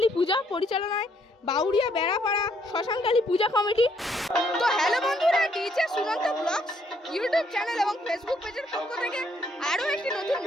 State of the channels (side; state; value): both; normal; correlation 0.70